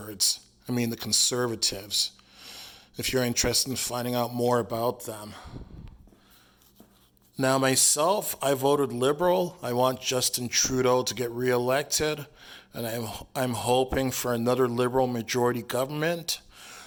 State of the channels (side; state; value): both; identical; correlation 1.00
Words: if you're interested in finding out more about them. Now, myself, I voted Liberal. I want Justin Trudeau to get reelected, and I'm hoping for another Liberal majority government,